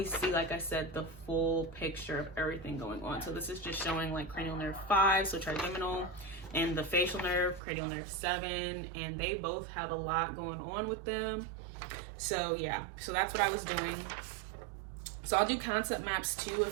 see, like I said, the full picture of everything going on. So this is just showing like cranial nerve 5, so trigeminal, and the facial nerve, cranial nerve 7, and they both have a lot going on with them. So yeah, so that's what I was doing. So I'll do concept maps too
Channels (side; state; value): left; drops out; at 7.6 s